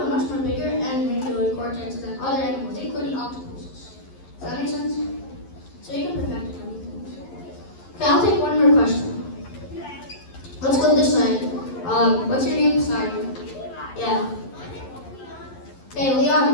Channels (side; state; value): right; late; 11 ms